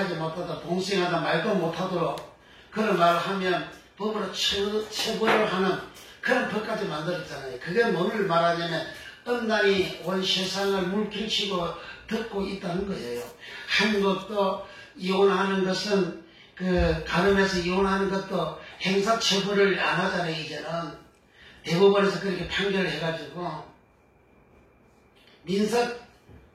못하도록 동성애하다 말도 못하도록 그런 말을 하면 법으로 처벌을 하는 그런 법까지 만들었잖아요. 그게 뭐를 말하냐면 음란이 온 세상을 물길치고 듣고 있다는 거예요. 한국도 이혼하는 것은 간음해서 이혼하는 것도 행사처벌을 안 하잖아요. 이제는 대법원에서 그렇게 판결을 해가지고 민사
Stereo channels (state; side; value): identical; both; correlation 1.00